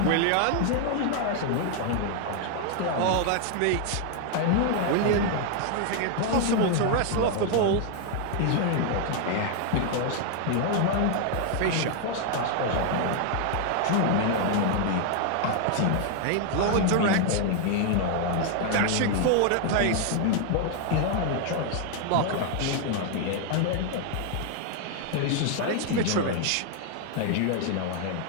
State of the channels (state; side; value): different; both; correlation 0.00